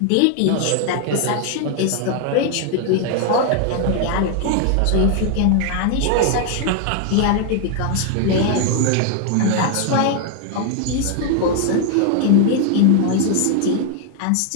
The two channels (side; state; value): both; different; correlation 0.00